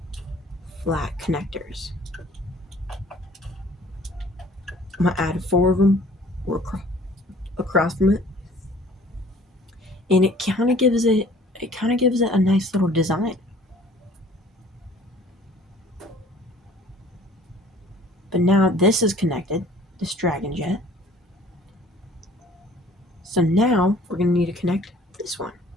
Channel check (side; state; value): both; normal; correlation 0.53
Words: flat connectors. I'm gonna add 4 of them across from it, and it kind of gives it a nice little design. But now this is connected, this Dragon Jet. So now we're gonna need to connect this one.